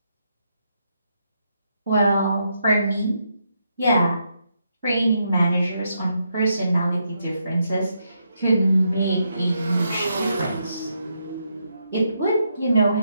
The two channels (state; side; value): inverted; both; correlation -0.80